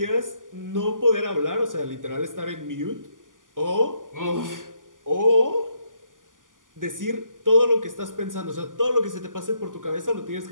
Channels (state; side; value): late; left; 0.88 ms